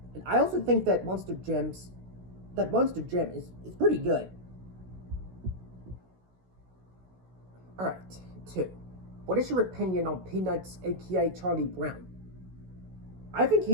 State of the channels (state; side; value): late; left; 16 ms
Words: and I also think that Monster Jam is pretty good. Alright, 2. What is your opinion on Peanuts, aka Charlie Brown? I think